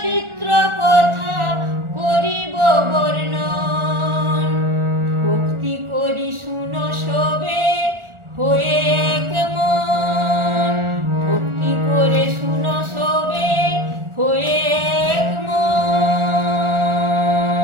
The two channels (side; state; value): left; late; 1.4 ms